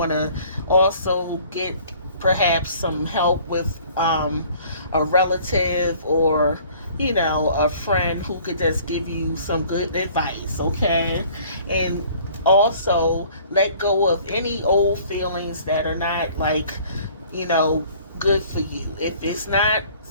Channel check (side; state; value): both; inverted; correlation -0.54